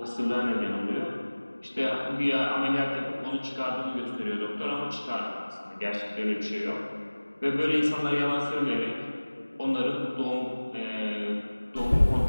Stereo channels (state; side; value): inverted; both; correlation -1.00